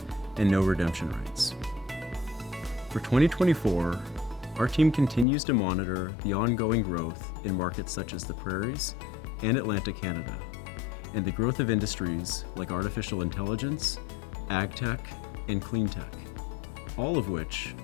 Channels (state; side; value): drops out; right; at 5.2 s